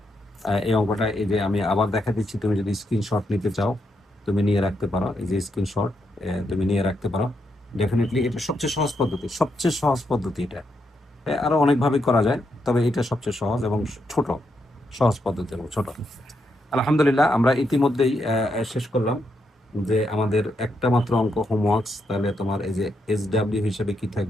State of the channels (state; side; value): normal; both; correlation 0.80